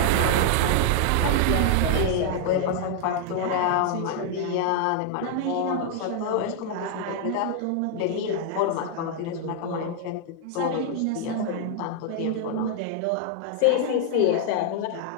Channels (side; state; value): both; different; correlation 0.00